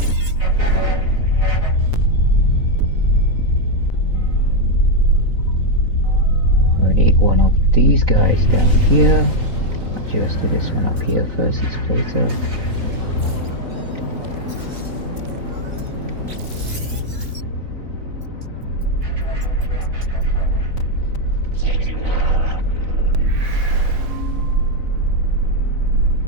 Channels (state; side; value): late; left; 3.9 ms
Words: We need one of these guys down here. Actually, let's do this one up here first. It's closer.